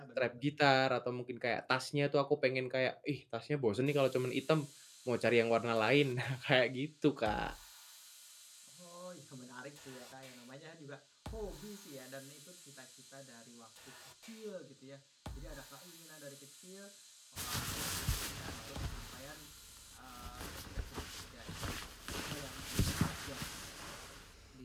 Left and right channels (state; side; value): identical; both; correlation 1.00